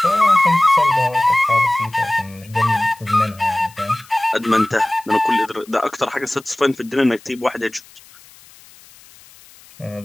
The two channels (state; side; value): noise; left; hiss, 24 dB below the sound